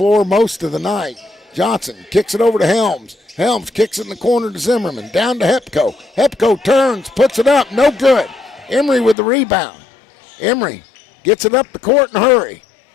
most of the night. Johnson kicks it over to Helms. Helms kicks it in the corner to Zimmerman. Down to Hepko. Hepko turns, puts it up, no good. Emery with the rebound. Emery gets it up the court in a hurry.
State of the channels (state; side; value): drops out; right; at 9.2 s